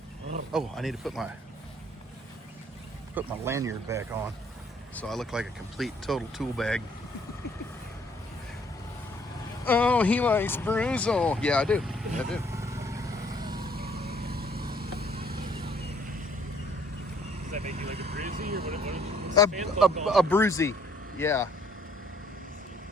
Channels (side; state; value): both; normal; correlation 0.63